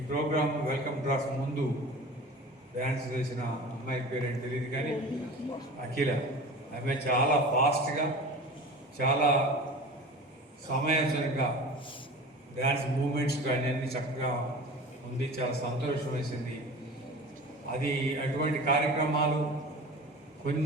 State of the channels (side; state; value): both; normal; correlation 0.37